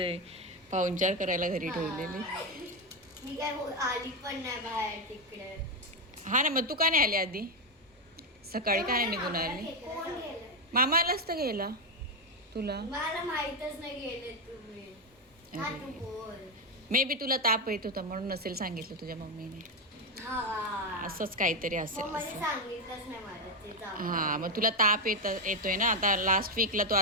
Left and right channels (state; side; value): normal; both; correlation 0.08